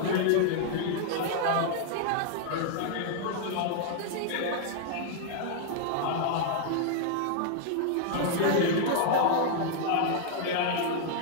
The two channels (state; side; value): different; both; correlation 0.00